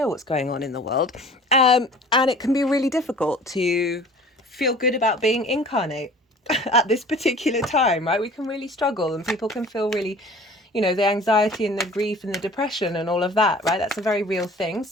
what's going on in the world. And it can be really difficult to feel good about being incarnate at this particular time, right? We can really struggle, and people can feel really, the anxiety and the grief and the depression and all of that, right? That's a very real thing.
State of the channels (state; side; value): normal; both; correlation 0.46